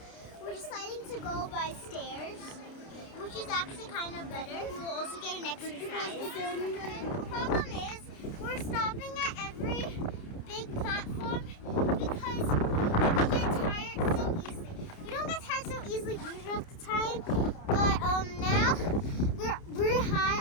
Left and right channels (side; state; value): right; late; 29 ms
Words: We're deciding to go by stairs, which is actually kind of better. We will also get an exercise. The problem is we're stopping at every big platform because we get tired so easily. We don't get tired so easily usually at the time, but now we're high